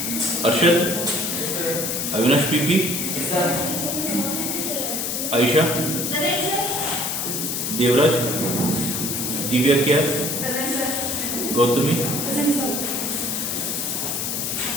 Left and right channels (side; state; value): left; noise; hiss, 1 dB below the sound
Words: अर्षद, अविनाश पीपी, आयशा, देवराज, दिव्या क्या, गौतमी,